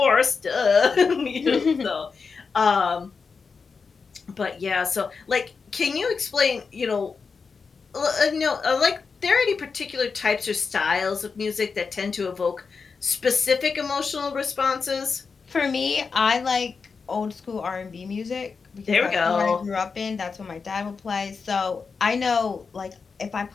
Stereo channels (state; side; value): quieter; right; 5.1 dB